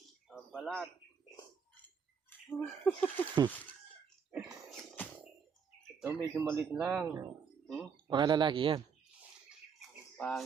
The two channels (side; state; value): left; quieter; 6.4 dB